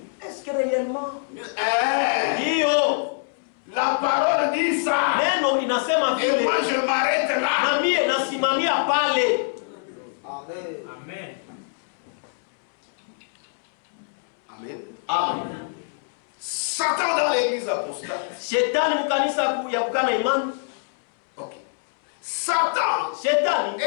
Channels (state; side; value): silent; right; 62 dB below the other